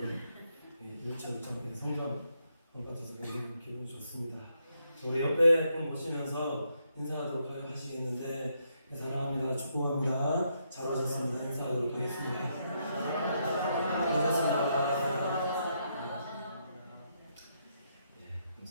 일차일차 성장 받아서 굉장히 기분이 좋습니다. 우리 옆에 분 보시면서 인사하도록 하시겠는데 사랑합니다. 축복합니다. 잘 오셨습니다. 인사하도록 하겠습니다. 반갑습니다.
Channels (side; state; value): both; inverted; correlation -0.77